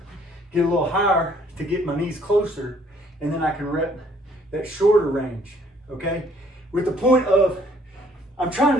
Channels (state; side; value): normal; both; correlation 0.62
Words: get a little higher to get my knees closer, and then I can rep that shorter range, okay? With the point of, I'm